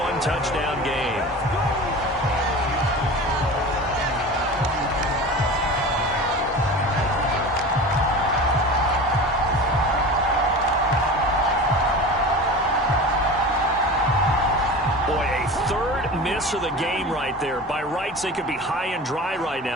game. Miss of the game right there. By rights, they could be high and dry right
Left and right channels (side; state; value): both; normal; correlation 0.33